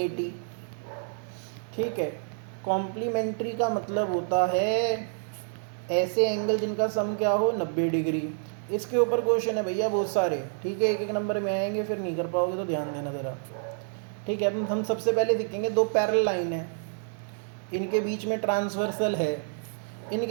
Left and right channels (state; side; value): silent; left; digital silence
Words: ठीक है, कॉम्प्लीमेंट्री का मतलब होता है ऐसे एंगल जिनका सम क्या हो? 90 डिग्री। इसके ऊपर क्वेश्चन है भैया बहुत सारे। ठीक है, एक एक नंबर में आएंगे, फिर नहीं कर पाओगे तो ध्यान देना ज़रा। ठीक है, अब हम सबसे पहले देखेंगे दो पैरेलल लाइन है, इनके बीच में ट्रांसवर्सल है,